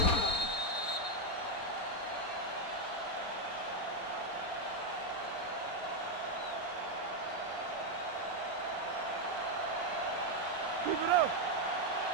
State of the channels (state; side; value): late; right; 4.3 ms